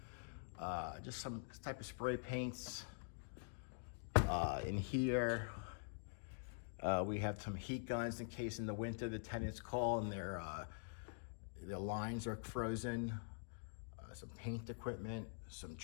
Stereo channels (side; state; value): right; silent; digital silence